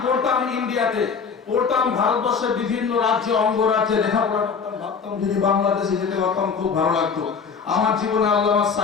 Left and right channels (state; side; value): quieter; right; 5.8 dB